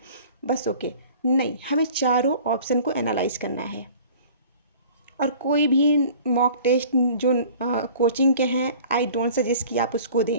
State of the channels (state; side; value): inverted; both; correlation -0.47